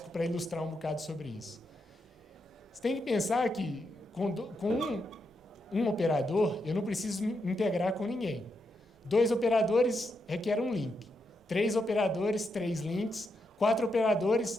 para ilustrar um bocado sobre isso. Você tem que pensar que com um operador, eu não preciso me integrar com ninguém. 2 operadores requer um link. 3 operadores, 3 links. 4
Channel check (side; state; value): both; normal; correlation 0.83